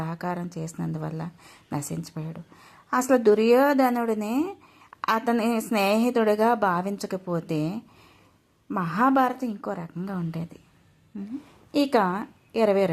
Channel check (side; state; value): both; identical; correlation 1.00